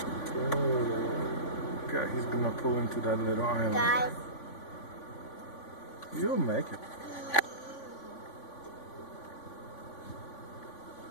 Oh, God, he's gonna pull into that little island. Guys. You'll make it.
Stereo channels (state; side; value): late; right; 3.5 ms